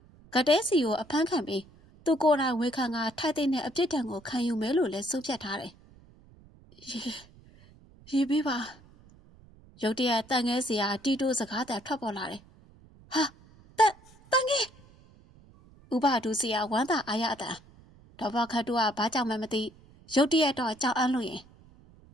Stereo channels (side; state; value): right; noise; rumble, 25 dB below the sound